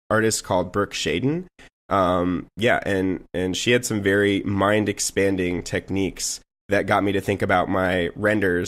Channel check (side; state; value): both; identical; correlation 1.00